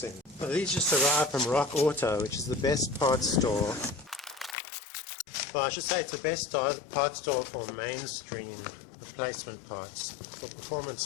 Well, these just arrived from Rock Auto, which is the best parts store. Well, I should say it's the best parts store for mainstream replacement parts. For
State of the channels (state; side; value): drops out; right; at 4.5 s